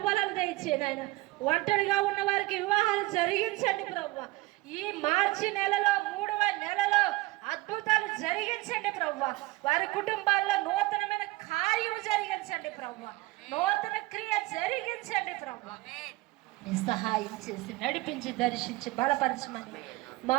దయచేయండి ఆయన. ఒంటరిగా ఉన్న వారికి వివాహాలు జరిగించండి ప్రభువా. ఈ మార్చి నెలలో 3వ నెలలో అద్భుతాలు జరిగించండి ప్రభువా. వారి కుటుంబాల్లో నూతనమైన కార్యము జరిగించండి ప్రభువా. నూతన క్రియ జరిగించండి ప్రభువా. సహాయం చేసి నడిపించి, దర్శించి, బలపరచమని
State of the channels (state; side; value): quieter; left; 20.4 dB